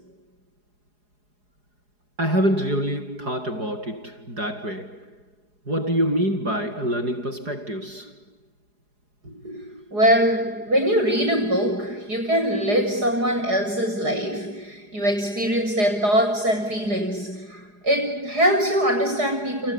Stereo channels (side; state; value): left; late; 4.8 ms